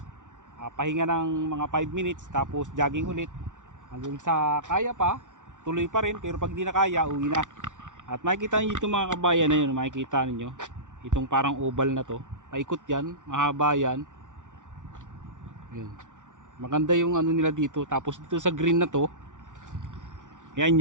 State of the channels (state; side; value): late; left; 0.86 ms